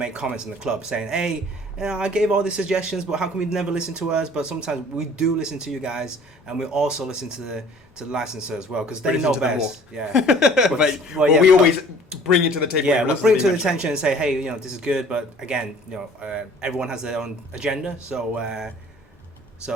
comments in the club saying, "Hey, I gave all these suggestions, but how come we never listen to us?" But sometimes we do listen to you guys, and we also listen to the licensor as well, because they know best. Yeah. We always bring it to the table. Yeah, we bring it to the attention and say, "Hey, this is good," but again, everyone has their own agenda, so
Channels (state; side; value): normal; both; correlation 0.51